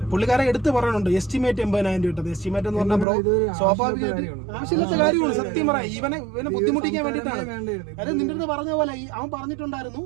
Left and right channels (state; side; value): drops out; left; at 3.1 s